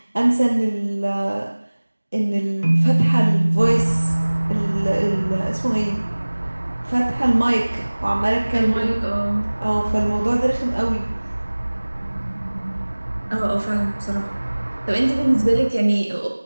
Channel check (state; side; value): inverted; both; correlation -1.00